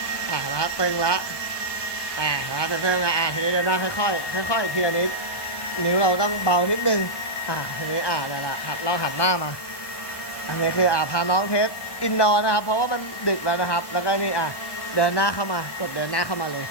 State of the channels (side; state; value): right; late; 1.2 ms